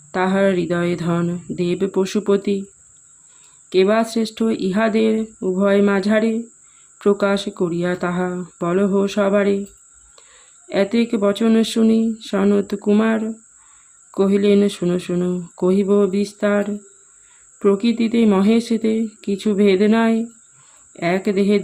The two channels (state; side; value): identical; both; correlation 1.00